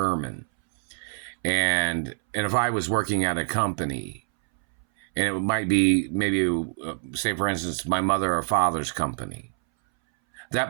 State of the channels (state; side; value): silent; left; 61 dB below the other